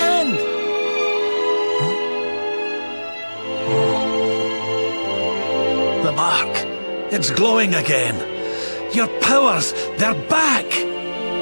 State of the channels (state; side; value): inverted; both; correlation -1.00